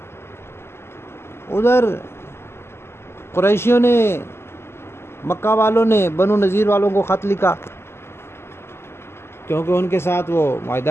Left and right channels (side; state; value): right; late; 0.12 ms